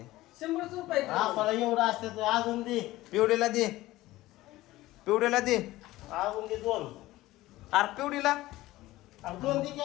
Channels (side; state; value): right; quieter; 17.3 dB